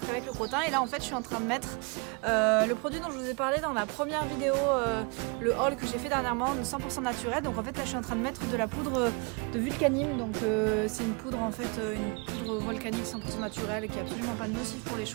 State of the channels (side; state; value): left; quieter; 32.6 dB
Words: avec le crottin. Et là en fait je suis en train de mettre le produit dont je vous ai parlé dans la première vidéo, le haul que j'ai fait dernièrement, de 100% naturel. Donc en fait là je suis en train de mettre de la poudre de vulcanime. Donc c'est une poudre en fait, une poudre volcanique 100% naturelle qui est absolument pas nocive pour les